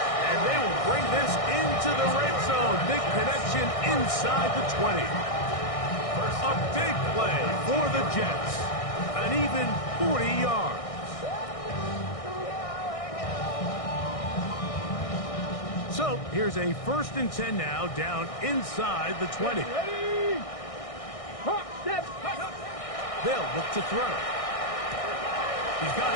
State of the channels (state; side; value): late; right; 1.6 ms